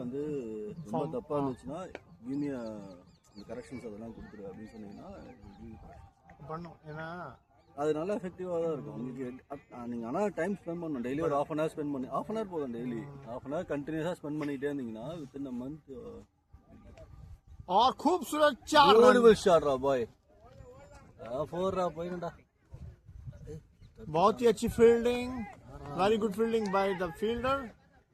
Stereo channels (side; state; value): both; identical; correlation 1.00